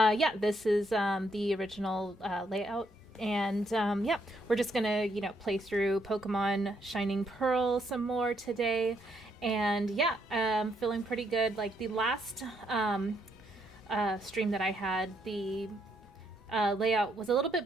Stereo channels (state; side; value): normal; both; correlation 0.74